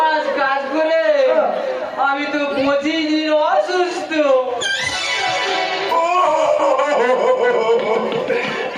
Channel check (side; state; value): both; identical; correlation 1.00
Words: কাজ করে আমি তো 25 দিন অসুস্থ।